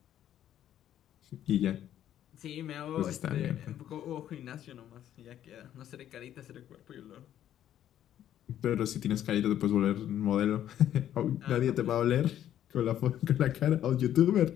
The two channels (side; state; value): right; quieter; 11.2 dB